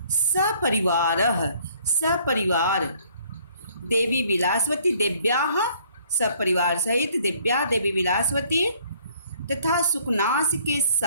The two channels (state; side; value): inverted; both; correlation -0.60